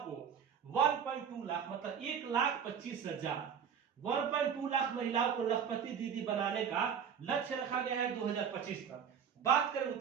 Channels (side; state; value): left; quieter; 7.6 dB